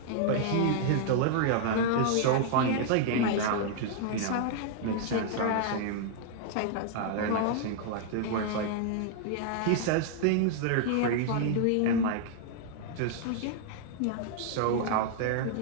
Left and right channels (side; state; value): both; different; correlation -0.01